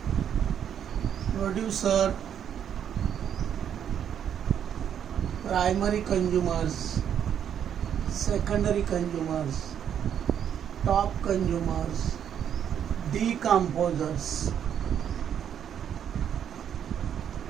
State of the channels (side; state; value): left; quieter; 9.0 dB